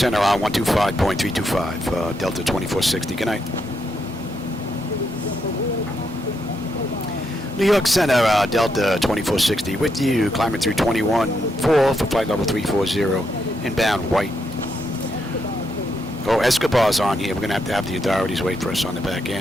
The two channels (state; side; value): normal; both; correlation 0.80